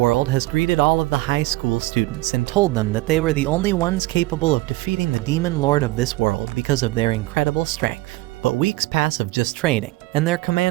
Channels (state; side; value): quieter; left; 19.7 dB